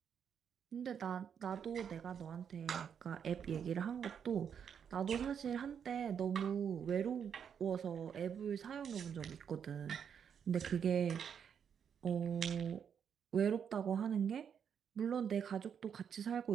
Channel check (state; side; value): quieter; left; 7.7 dB